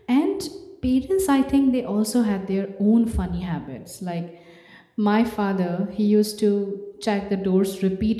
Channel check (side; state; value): both; identical; correlation 1.00